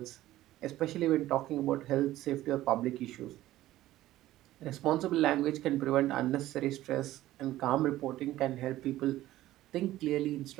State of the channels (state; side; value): quieter; left; 15.2 dB